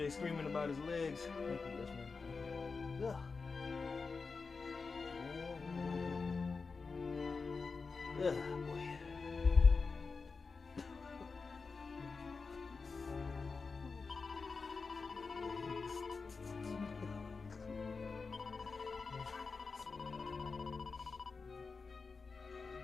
screaming about his legs. Thank you, yes, ma'am. Boy.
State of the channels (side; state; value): right; quieter; 4.6 dB